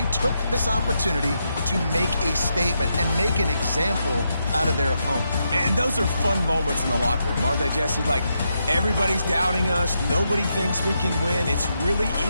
took this opportunity to make a statement and make an example out of their opponent. And those are fun moments in the locker room, aren't they, Jesse? Like, everybody's doubting us. Nobody thinks we can win. It's really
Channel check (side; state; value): both; inverted; correlation -0.82